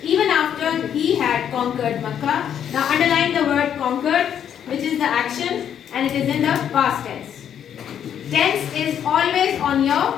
Even after he had conquered Makkah. Now underline the word conquered, which is the action and it is in the past tense. Tense is always on your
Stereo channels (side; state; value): right; quieter; 9.2 dB